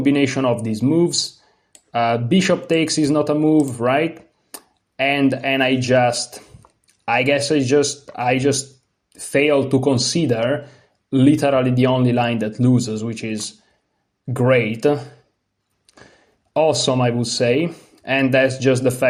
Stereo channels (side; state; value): both; identical; correlation 1.00